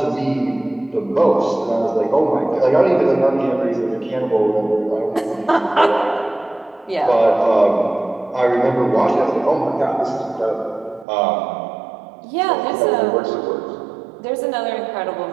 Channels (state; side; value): drops out; left; at 11.1 s